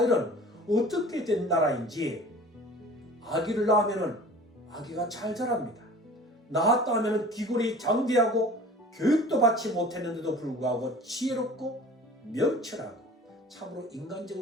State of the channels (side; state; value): both; normal; correlation 0.43